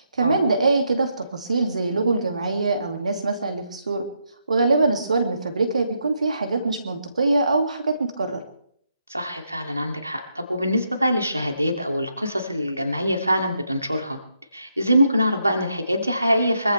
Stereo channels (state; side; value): inverted; both; correlation -0.79